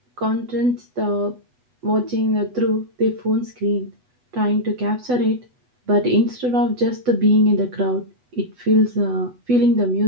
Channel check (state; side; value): late; left; 8.1 ms